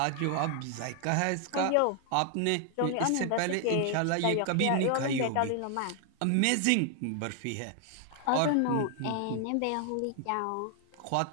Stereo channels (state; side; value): different; both; correlation 0.00